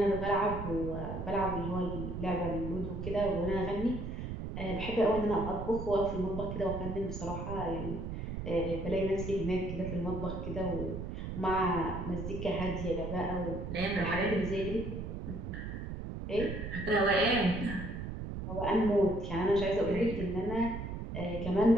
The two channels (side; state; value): right; noise; rumble, 6 dB below the sound